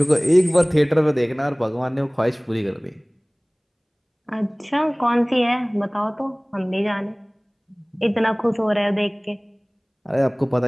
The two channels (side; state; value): both; identical; correlation 1.00